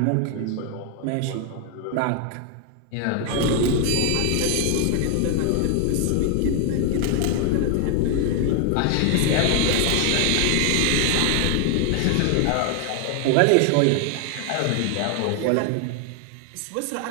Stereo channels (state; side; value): different; both; correlation 0.00